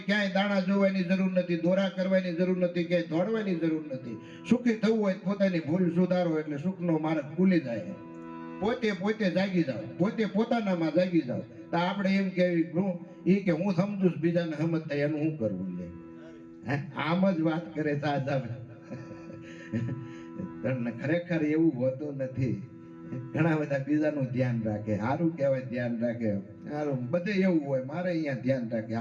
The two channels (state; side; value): identical; both; correlation 1.00